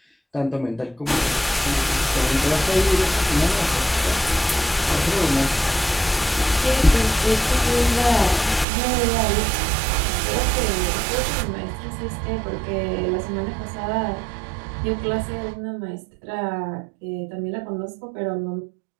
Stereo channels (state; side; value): drops out; left; at 8.7 s